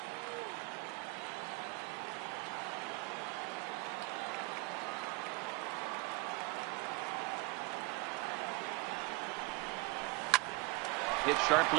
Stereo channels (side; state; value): left; quieter; 25.1 dB